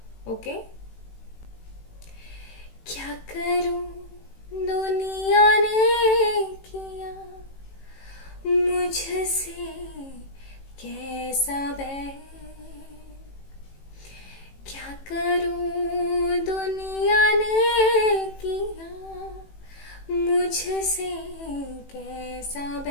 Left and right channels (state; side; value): late; right; 18 ms